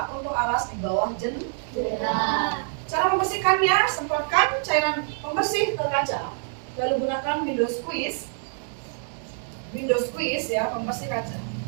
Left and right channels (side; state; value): left; silent; 61 dB below the other